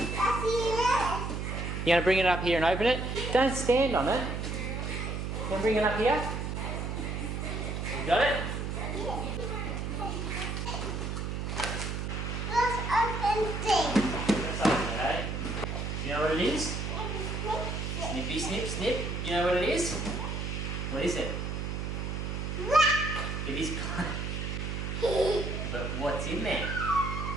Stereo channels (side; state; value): right; noise; hum, 3 dB below the sound